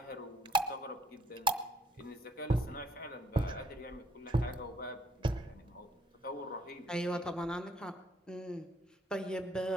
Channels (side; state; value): both; normal; correlation 0.63